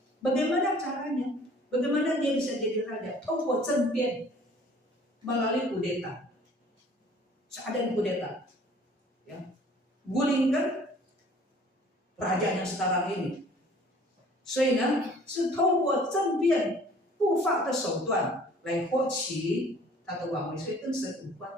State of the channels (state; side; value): normal; both; correlation 0.53